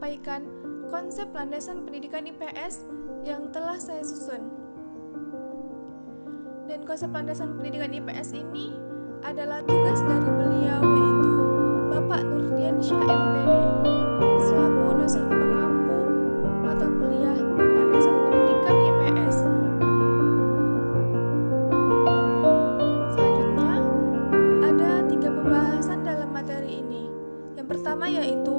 konsep landasan pendidikan IPS yang telah saya susun. Dan konsep landasan pendidikan IPS ini adalah tugas dari beliau, yaitu Bapak Nurdian Syah MPD selaku dosen pengampu mata kuliah landasan pendidikan IPS. Selanjutnya, ada 3 pembahasan dalam materi ini. Yang pertama yaitu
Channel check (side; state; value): both; inverted; correlation -1.00